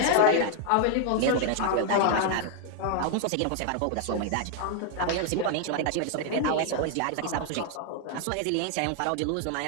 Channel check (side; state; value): both; different; correlation 0.00